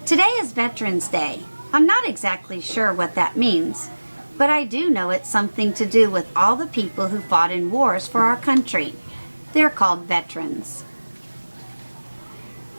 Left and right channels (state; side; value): inverted; both; correlation -1.00